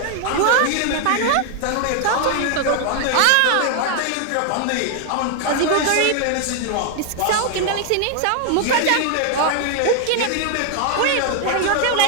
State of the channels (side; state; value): both; different; correlation 0.00